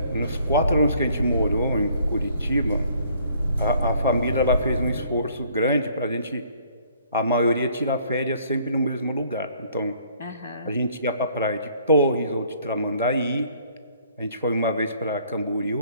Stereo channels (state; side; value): inverted; both; correlation -0.61